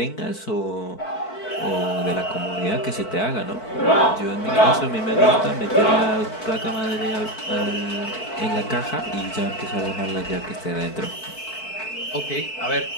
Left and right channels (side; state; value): right; late; 4.5 ms